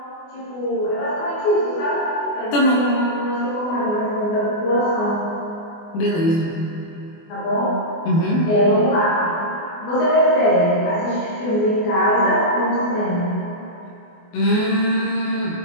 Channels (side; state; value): right; late; 24 ms